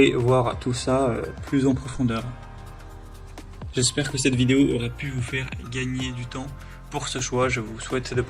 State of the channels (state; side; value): identical; both; correlation 1.00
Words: voir tout ça plus en profondeur. J'espère que cette vidéo aura pu vous faire gagner du temps pour ce choix. Je vous souhaite de